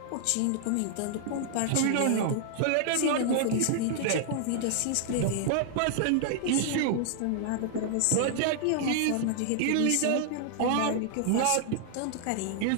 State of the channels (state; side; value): different; both; correlation 0.00